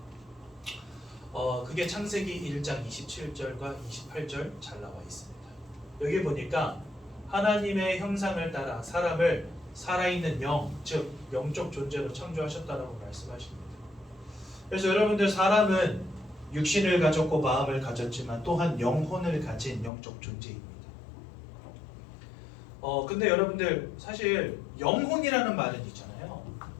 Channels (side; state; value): right; drops out; at 19.9 s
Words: 그게 창세기 1장 27절과 28절 잘 나와 있습니다. 여기 보니까 하나님의 형상을 따라 사람을 살아있는 영, 즉 영적 존재로 창조하셨다라고 말씀하십니다. 그래서 여러분들 사람은 육신을 가졌고 마음을 가졌지만 또한 영혼을 가진 영적 존재입니다. 근데 여러분들 사실 영혼이라는 말은 있잖아요.